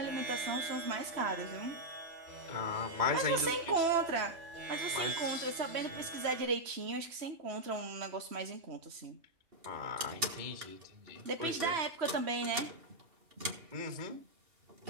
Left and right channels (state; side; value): late; left; 2.8 ms